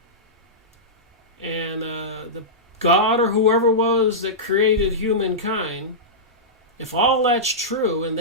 and the God or whoever was that created humankind, if all that's true, and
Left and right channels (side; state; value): both; normal; correlation -0.14